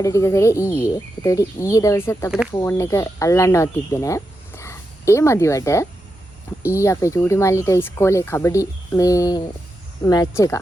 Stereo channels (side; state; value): both; normal; correlation 0.87